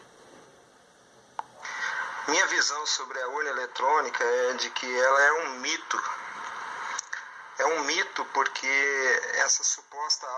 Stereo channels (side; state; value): both; identical; correlation 1.00